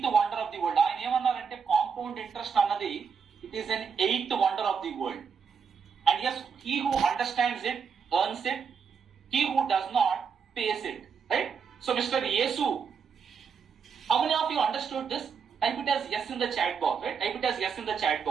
wonder of the world. ఆయన ఏమన్నారంటే కాంపౌండ్ ఇంట్రెస్ట్ అన్నది it is an 8th wonder of the world. And yes, he who understands it earns it. He who does not pays it. Right? So, Mr. Yesu, how many of you understood this? Type it as yes in the chat box. Right? Type it as yes in the chat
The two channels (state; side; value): quieter; left; 6.3 dB